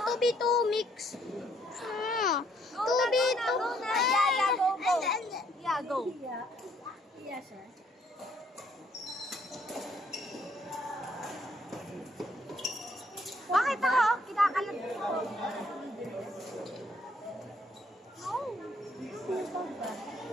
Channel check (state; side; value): normal; both; correlation 0.66